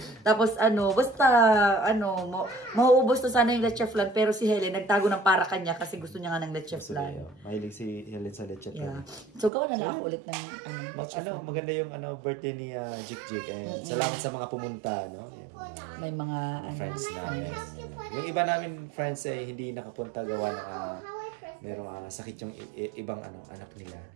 Tapos mauubos to sana yung leche flan, pero si Helen nagtago ng para kanya kasi gusto niya nga ng leche flan. Mahilig si Helen sa leche flan. Yeah. So gawa na lang ako ulit ng leche flan. Maganda yung birthday ni Jik Jik. And salamat sa mga pumunta, no? May mga friends namin. Yung iba namin friends hindi nakapunta gawa na merong sakit yung ibang anak nila.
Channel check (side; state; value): left; drops out; at 9.5 s